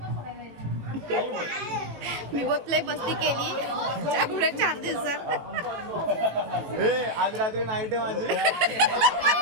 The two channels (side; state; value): left; late; 18 ms